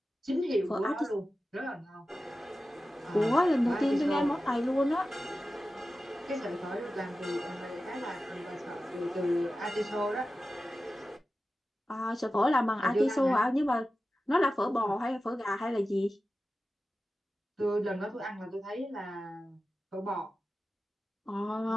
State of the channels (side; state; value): both; normal; correlation 0.94